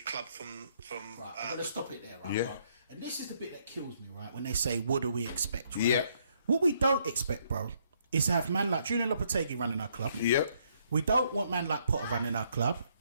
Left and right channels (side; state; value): both; inverted; correlation -0.70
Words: from I'm going to stop it there, right? Bro? And this is the bit that kills me, right? When they say, what do we expect, right? What we don't expect, bro, is to have man like Julian Lopetegui running our club. We don't want man like Potter running our club.